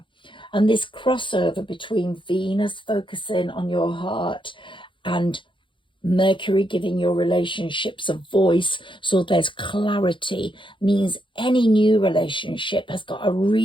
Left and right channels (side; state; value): right; late; 0.24 ms